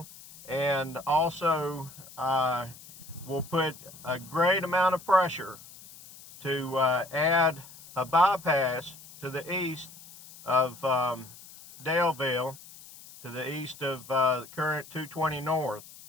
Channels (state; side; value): noise; left; hiss, 19 dB below the sound